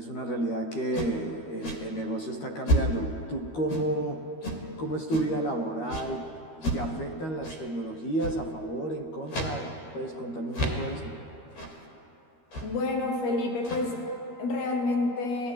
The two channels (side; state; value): right; late; 13 ms